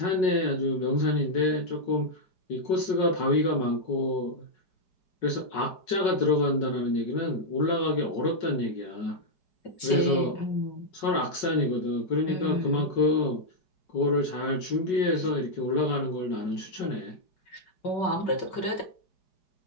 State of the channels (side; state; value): right; late; 5.4 ms